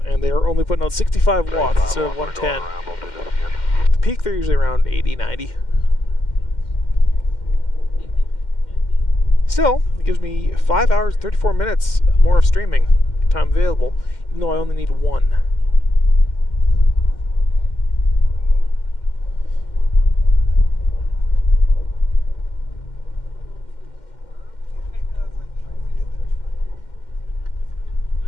they are only putting out 65 watts instead of 110. The peak, they're usually around 80, 90. Still, it gives me 5 hours, 34 minutes more of streaming time available, even though I only need 1.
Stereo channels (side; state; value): right; late; 2.1 ms